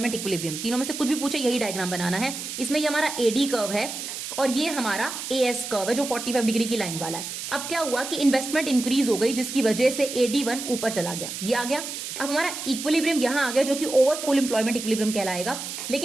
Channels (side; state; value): right; noise; hiss, 7 dB below the sound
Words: इक्विलिब्रियम। तीनों में से कुछ भी पूछे यही डायग्राम बनाना है। इसमें ये हमारा एडी कर्व है और ये हमारा एएस कर्व है जो 45 डिग्री की लाइन वाला है। अब क्या हुआ कि इन्वेस्टमेंट इंक्रीज हो गई जिसकी वजह से AD1 ऊपर चला गया, ये आ गया। अब हमारा इक्विलिब्रियम यहां आ गया जो कि ओवर फुल एम्प्लॉयमेंट इक्विलिब्रियम कहलाएगा,